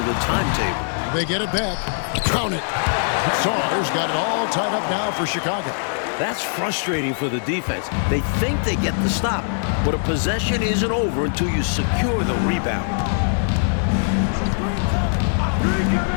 the timetable. They get it back. Count it. Sars got it all tied up now for Chicago. That's frustrating for the defense. They think they get the stop, but a possession isn't over until you secure the rebound.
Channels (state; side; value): silent; right; digital silence